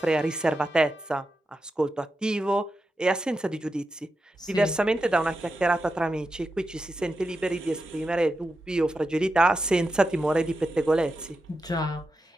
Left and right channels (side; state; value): both; normal; correlation 0.89